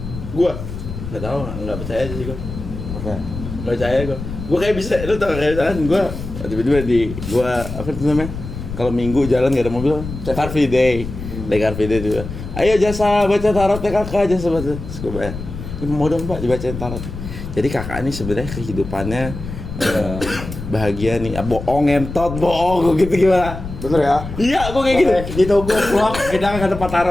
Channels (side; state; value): left; noise; rumble, 9 dB below the sound